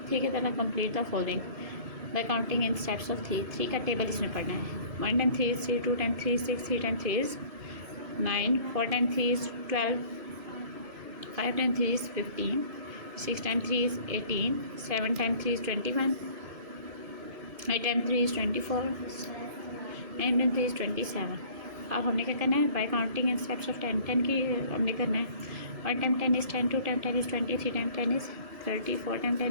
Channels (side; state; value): left; late; 1.7 ms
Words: 3 की तरह। Complete the following bye counting in steps of 3। 3 का टेबल इसमें पढ़ना है। 1 time 3 is 3, 2 time 3 is 6, 3 time 3 is 9, 4 time 3 is 12, 5 time 3 is 15, 6 time 3 is 18, 7 time 3 is 21, 8 time 3 is 24, 9 time 3 is 27। अब हमने क्या करना है, bye counting in steps of 10। 10 की हमने करना है। 1 time 10 is 10, 2 time 10 is 20, 3 time 10 is 30, 4 time